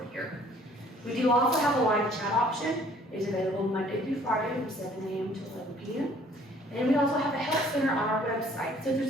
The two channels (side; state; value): both; normal; correlation 0.58